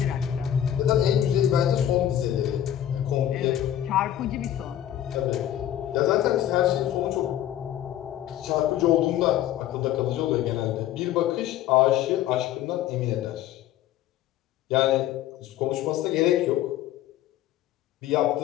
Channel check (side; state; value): right; quieter; 11.8 dB